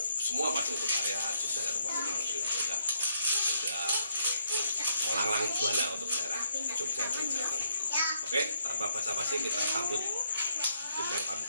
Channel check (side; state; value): both; inverted; correlation -0.73